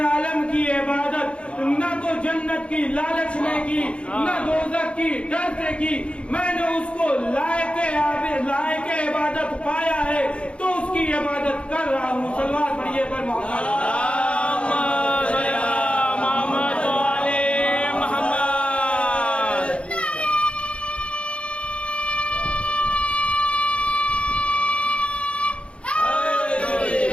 عالم کی عبادت نہ تو جنت کی لالچ میں کی، نہ دوزخ کی ڈر سے کی. میں نے اس کو لائق عبادت پایا ہے تو اس کی عبادت کر رہا ہوں. صلوات پڑھیے پر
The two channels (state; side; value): late; right; 0.059 ms